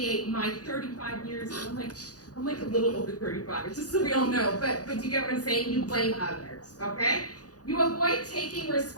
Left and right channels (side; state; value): right; late; 0.68 ms